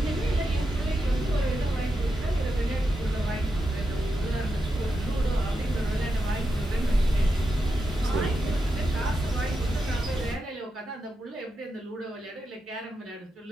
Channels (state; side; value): normal; both; correlation 0.87